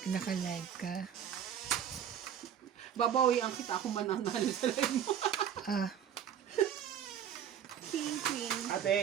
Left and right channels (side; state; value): left; quieter; 9.0 dB